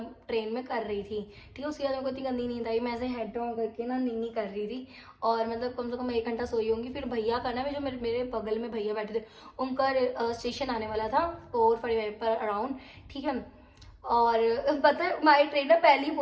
कर रही थी, ठीक है। उसके बाद मेरे को इतनी गंदी नींद आई, मैं ऐसे हेड डाउन करके ना नीनी कर रही थी, और मतलब कम से कम 1 घंटा सोई होंगी। फिर भैया का ना, जो मेरे बगल में भैया बैठे थे, उनका स्टेशन आने वाला था 4:45 पर अराउंड, ठीक है। और पता है हमारी ट्रेन ना पहले ही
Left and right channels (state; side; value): identical; both; correlation 1.00